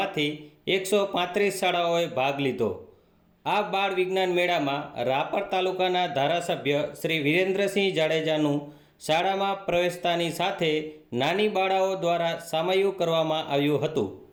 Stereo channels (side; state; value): both; identical; correlation 1.00